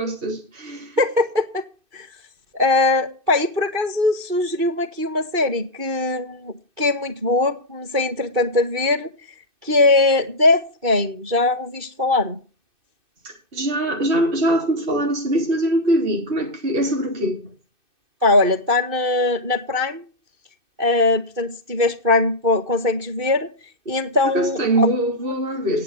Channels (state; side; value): late; left; 2.6 ms